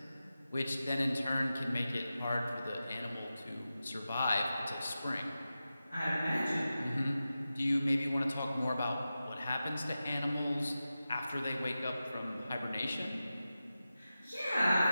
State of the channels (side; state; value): both; inverted; correlation -0.93